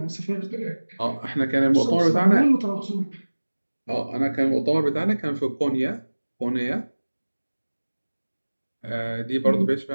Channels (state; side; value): inverted; both; correlation -1.00